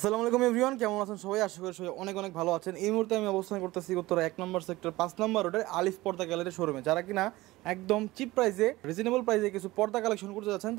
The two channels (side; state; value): left; quieter; 18.9 dB